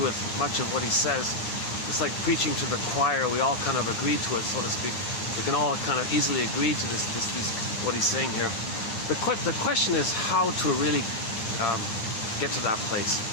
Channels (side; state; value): right; late; 8.8 ms